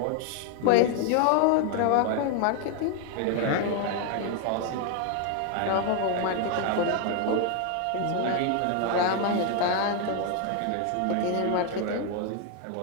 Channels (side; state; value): both; different; correlation 0.00